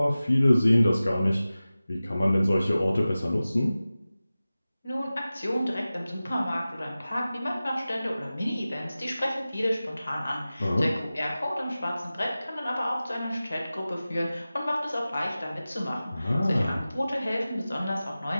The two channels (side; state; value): both; inverted; correlation -0.96